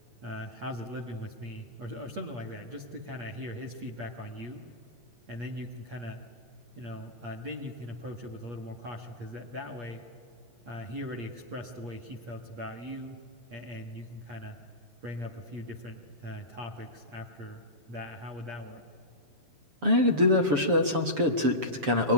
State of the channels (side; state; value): left; late; 7.0 ms